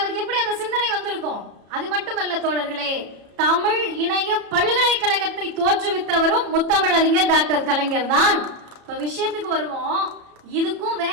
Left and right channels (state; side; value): late; left; 33 ms